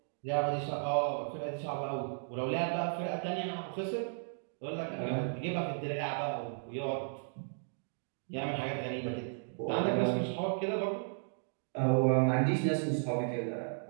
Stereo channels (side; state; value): left; silent; digital silence